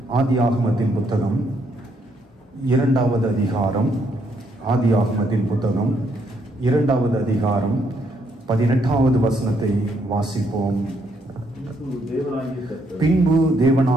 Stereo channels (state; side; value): normal; both; correlation 0.73